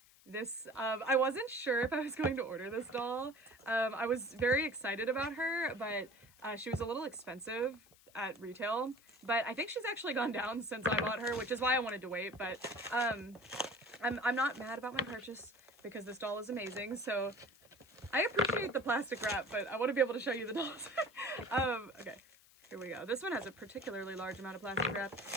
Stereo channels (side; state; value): left; noise; hiss, 26 dB below the sound